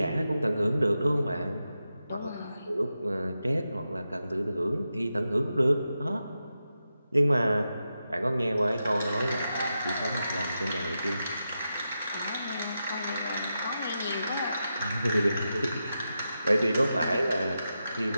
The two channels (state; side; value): inverted; both; correlation -0.89